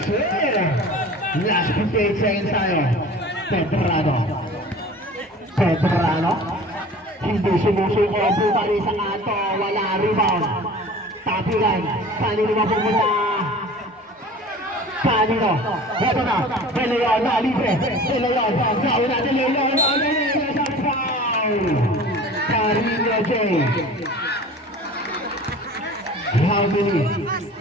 sir! Last 58 seconds tayo. Pedrano. Hindi sumusuko. Bumali sa ato. Wala rebound. Tapigan. Kanino mapupunta? Kanino? Ito na. De Leon na. Libre. De Leon. Nauna De Leon. Foul. Carino J. How many?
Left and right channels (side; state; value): both; normal; correlation 0.42